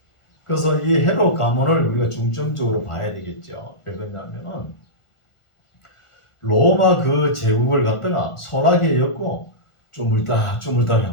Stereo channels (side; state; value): right; late; 1.4 ms